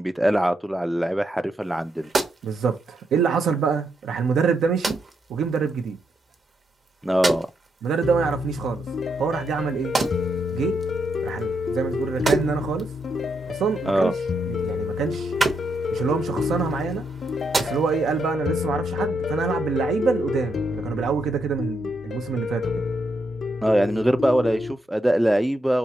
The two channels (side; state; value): both; normal; correlation 0.80